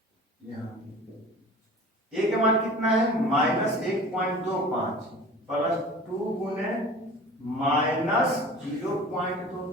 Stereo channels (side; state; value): both; normal; correlation 0.40